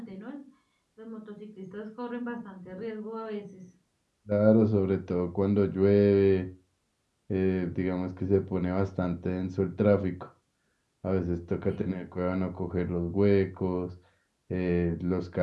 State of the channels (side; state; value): both; identical; correlation 1.00